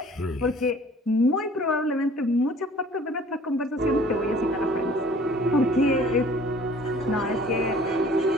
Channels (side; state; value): both; normal; correlation 0.52